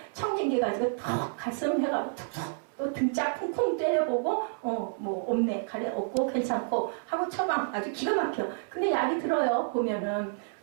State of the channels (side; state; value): left; silent; 58 dB below the other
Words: 청진기 가지고 턱 가슴 해가지고 툭툭 또 등짝 쿵쿵 때려보고 뭐 없네 가래 없고 괜찮고 하고 처방 아주 기가 막혀. 근데 약이 들어요. 보면은